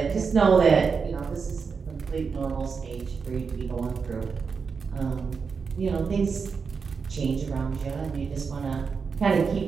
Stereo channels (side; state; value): left; quieter; 5.5 dB